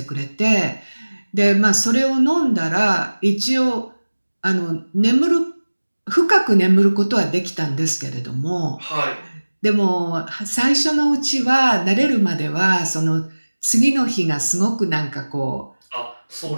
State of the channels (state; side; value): inverted; both; correlation -1.00